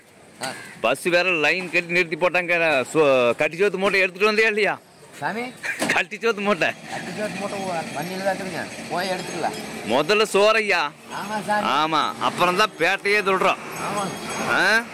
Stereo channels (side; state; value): both; identical; correlation 1.00